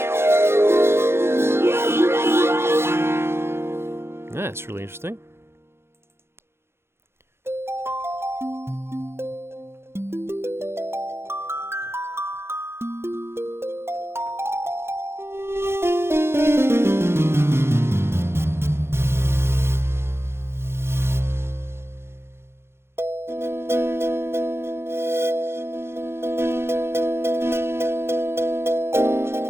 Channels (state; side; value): late; left; 0.12 ms